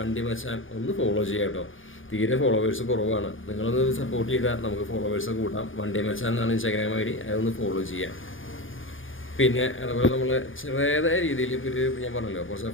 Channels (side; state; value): right; late; 0.58 ms